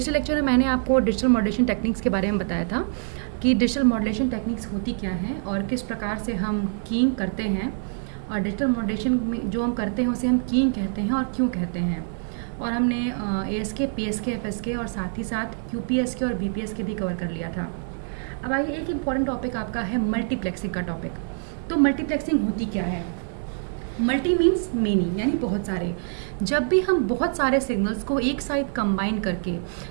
lecture में मैंने आपको डिजिटल मॉड्यूलेशन टेक्निक्स के बारे में बताया था कि डिजिटल मॉड्यूलेशन टेक्निक्स होती क्या हैं और किस प्रकार से हम कीइंग करते हैं, और डिजिटल मॉड्यूलेशन में जो हम करते हैं उसे हम कीइंग कहते हैं और क्यों कहते हैं। और हमने ASK, PSK, FSK और साथ ही साथ QPSK और BPSK भी कवर कर लिया था। अब आइए, एक इम्पॉर्टेंट टॉपिक आपका है मल्टीप्लेक्सिंग का टॉपिक। तो मल्टीप्लेक्सिंग होती क्या है? मल्टी मीन्स मेनी, यानी बहुत सारे। जब भी हम बहुत सारे सिग्नल्स को एक साथ कंबाइन करके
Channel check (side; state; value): left; silent; 62 dB below the other